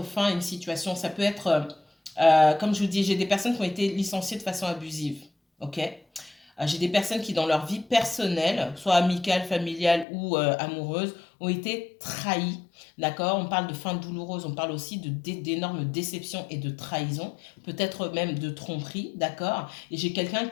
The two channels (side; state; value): right; drops out; at 10.1 s